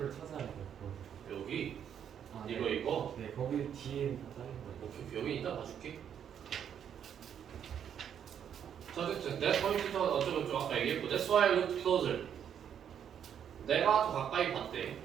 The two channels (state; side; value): quieter; left; 8.7 dB